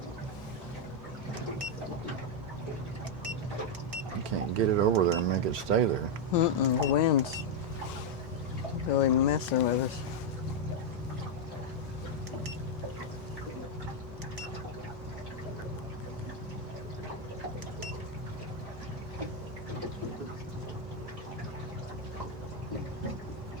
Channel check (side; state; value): both; normal; correlation 0.01